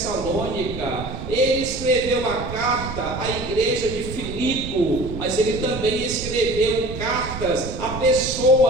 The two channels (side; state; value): right; noise; rumble, 9 dB below the sound